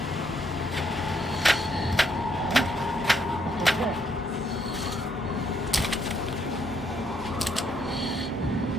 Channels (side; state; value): both; normal; correlation 0.72